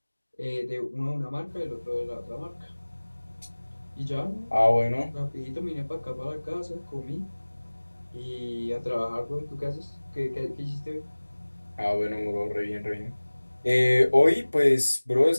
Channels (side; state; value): both; inverted; correlation -1.00